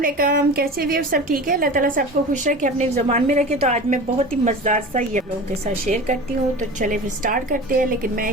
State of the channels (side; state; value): both; normal; correlation 0.34